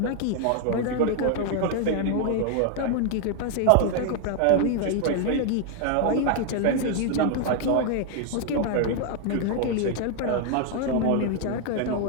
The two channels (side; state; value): both; different; correlation 0.00